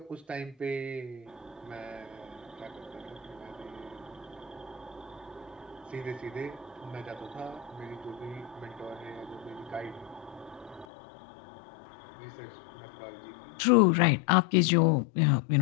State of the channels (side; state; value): right; drops out; at 10.9 s